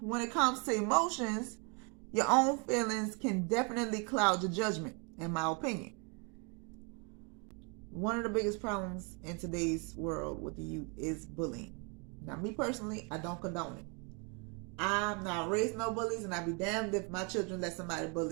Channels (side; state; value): left; quieter; 34.3 dB